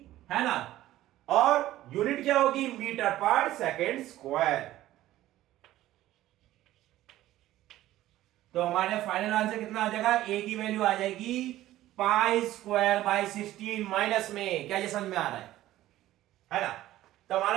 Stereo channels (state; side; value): quieter; left; 14.7 dB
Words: है ना। और यूनिट क्या होगी? मीटर पर सेकेंड स्क्वायर। तो हमारे फाइनल आंसर कितना आ जाएगा? ए की वैल्यू आ जाएगी पाई स्क्वायर बाय 16 माइनस में। क्या ये समझ में आ रहा है ना। तो हमारा